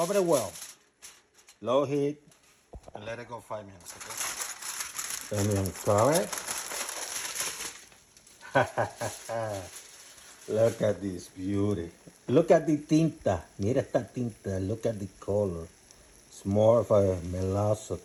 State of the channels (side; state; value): both; identical; correlation 1.00